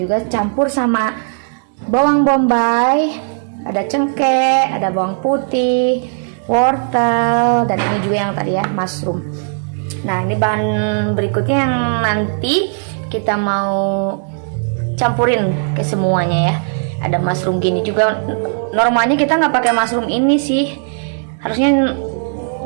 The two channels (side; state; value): left; silent; digital silence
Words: campur sama bawang bombay, ada cengkeh, ada bawang putih, wortel, dan ini juga yang tadi ya mushroom. Nah ini bahan berikutnya yang nanti kita mau campurin ke semuanya ya. Ada mushroom gini juga. Normalnya kita nggak pakai mushroom ini sih, harusnya